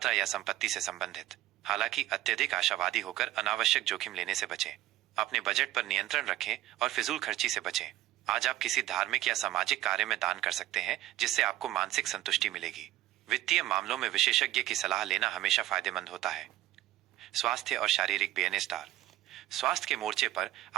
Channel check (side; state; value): left; quieter; 15.3 dB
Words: या संपत्ति से संबंधित। हालांकि अत्यधिक आशावादी होकर अनावश्यक जोखिम लेने से बचें। अपने बजट पर नियंत्रण रखें और फिजूल खर्ची से बचें। आज आप किसी धार्मिक या सामाजिक कार्य में दान कर सकते हैं, जिससे आपको मानसिक संतुष्टि मिलेगी। वित्तीय मामलों में विशेषज्ञ की सलाह लेना हमेशा फायदेमंद होता है। स्वास्थ्य और शारीरिक बेनेस्टार। स्वास्थ्य के मोर्चे पर